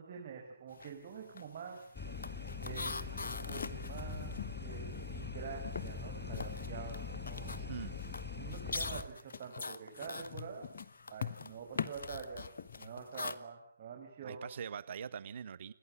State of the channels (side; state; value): both; inverted; correlation -0.45